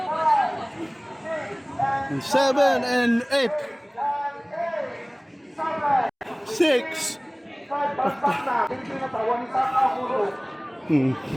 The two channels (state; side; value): identical; both; correlation 1.00